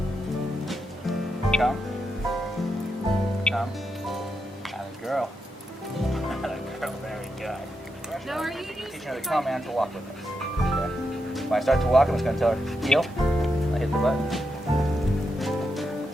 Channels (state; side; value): normal; both; correlation 0.85